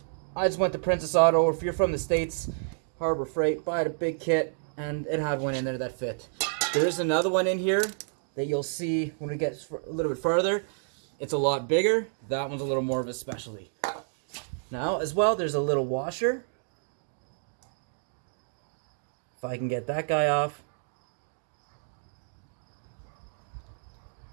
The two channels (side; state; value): left; silent; digital silence